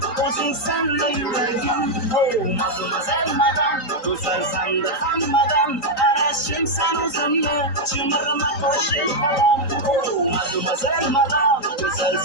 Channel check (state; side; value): late; right; 3.8 ms